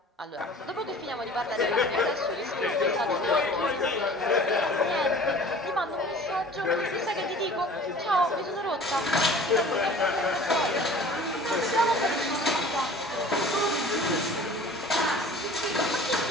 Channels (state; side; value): normal; both; correlation 0.45